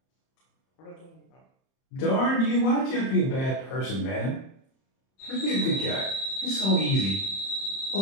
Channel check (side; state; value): right; late; 30 ms